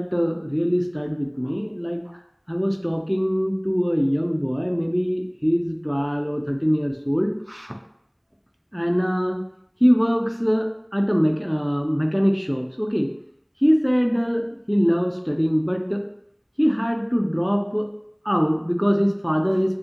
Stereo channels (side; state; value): both; identical; correlation 1.00